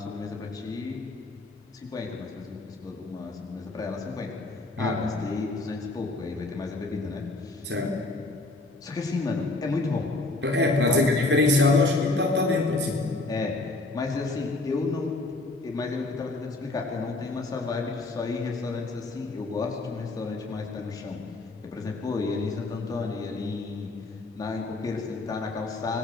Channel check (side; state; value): right; quieter; 3.1 dB